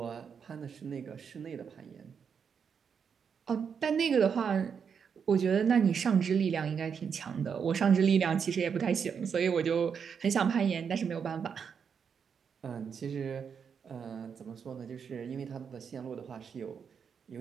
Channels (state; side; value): quieter; left; 6.7 dB